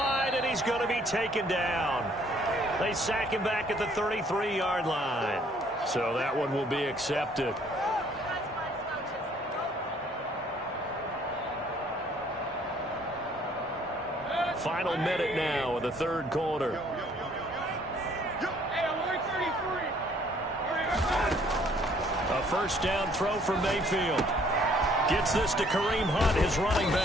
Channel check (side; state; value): both; normal; correlation 0.61